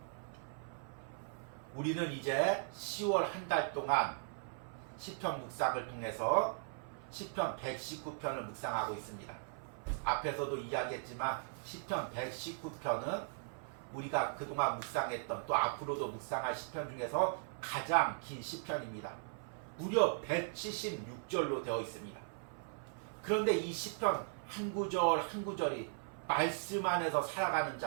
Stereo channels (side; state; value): left; silent; 52 dB below the other